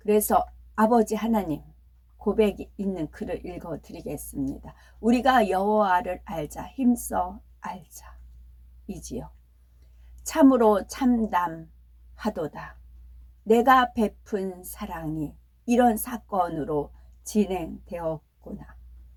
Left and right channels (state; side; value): identical; both; correlation 1.00